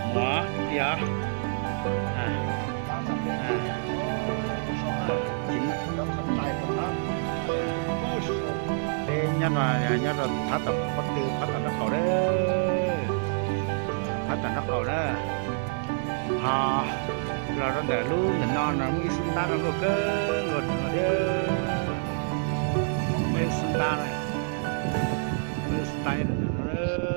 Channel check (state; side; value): silent; left; digital silence